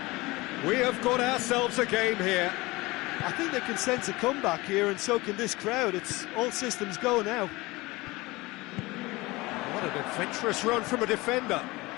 We have got ourselves a game here. I think they can sense a comeback here, and so can this crowd. It's all systems go now. What an adventurous run from a defender.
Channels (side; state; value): right; quieter; 21.9 dB